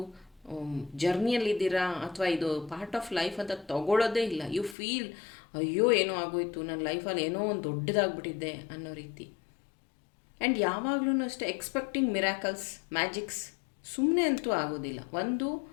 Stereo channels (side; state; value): right; drops out; at 4.8 s